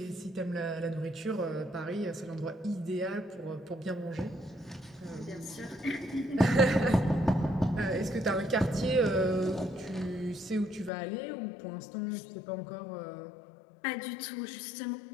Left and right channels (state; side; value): drops out; right; at 10.9 s